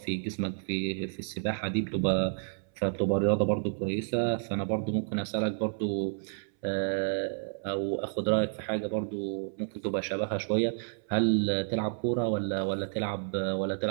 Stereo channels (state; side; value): silent; left; 57 dB below the other